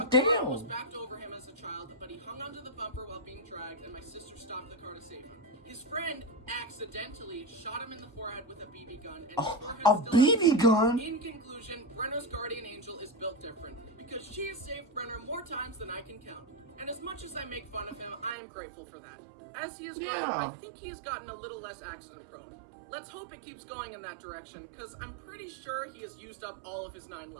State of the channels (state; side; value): drops out; left; at 18.4 s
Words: damn! The car was backed over him as a child, but he hung onto the bumper while being dragged, and my sister stopped the car to save him. His friend accidentally shot him in the forehead with a BB gun. And A BB gun? In conclusion, Brenner's guardian angel is built different, because she has saved Brenner more times than I can count. And as much as I make fun of him, I am grateful for that. As he has grown, I think he has gotten a little less accident prone. Let's hope it keeps going in that direction, because I'm pretty sure he has used up all of his 9